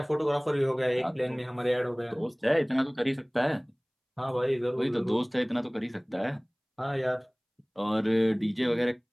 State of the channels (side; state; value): both; identical; correlation 1.00